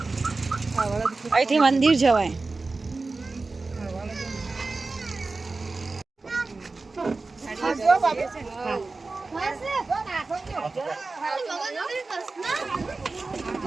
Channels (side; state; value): left; quieter; 3.7 dB